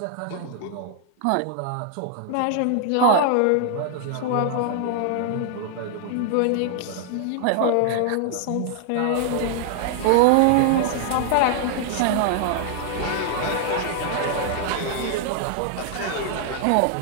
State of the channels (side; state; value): both; different; correlation 0.00